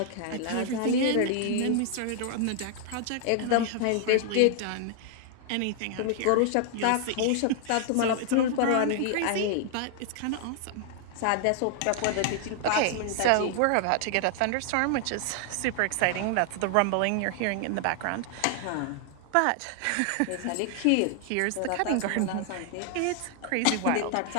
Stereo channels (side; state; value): both; different; correlation 0.00